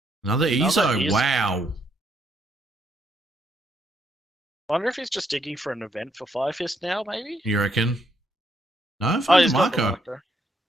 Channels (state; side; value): normal; both; correlation 0.74